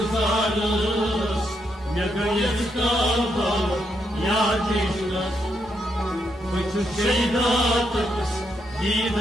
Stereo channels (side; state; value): both; normal; correlation 0.79